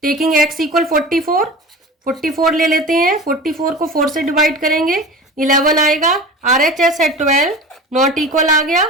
टेकिंग x इक्वल 44 ले लेते हैं, 44 को 4 से डिवाइड करेंगे 11 आएगा। RHS है 12 नॉट इक्वल आ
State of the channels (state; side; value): normal; both; correlation 0.34